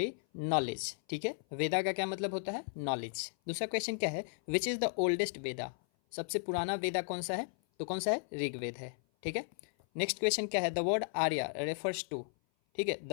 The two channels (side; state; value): right; silent; 54 dB below the other